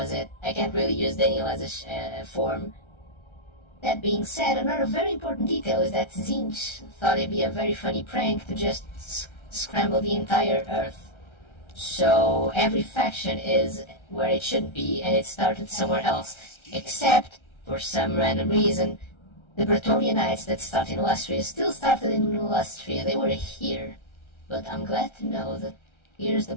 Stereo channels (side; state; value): right; late; 1.3 ms